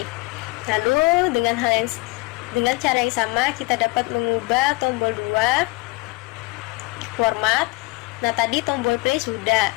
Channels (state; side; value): quieter; right; 24.0 dB